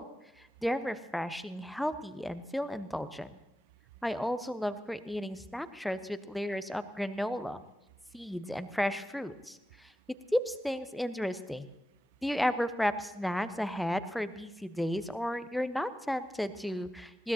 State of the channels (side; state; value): both; normal; correlation 0.92